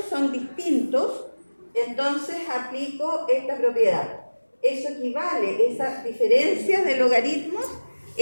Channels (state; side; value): inverted; both; correlation -1.00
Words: son distintos, entonces aplico esta propiedad. Eso equivale, esa diferencia de logaritmos